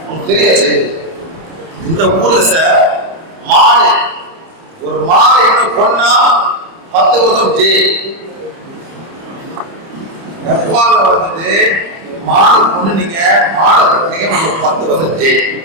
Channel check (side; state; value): left; late; 30 ms